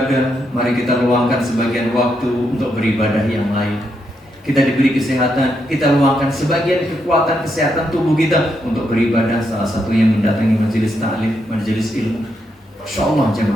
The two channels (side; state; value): both; normal; correlation 0.80